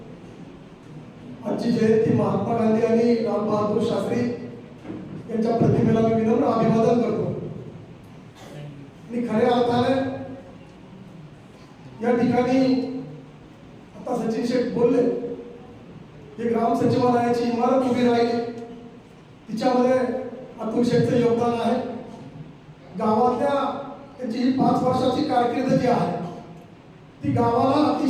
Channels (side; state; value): both; identical; correlation 1.00